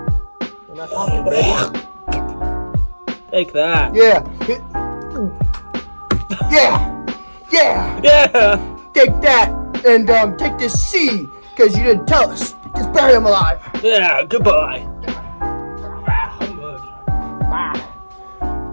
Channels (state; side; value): inverted; both; correlation -1.00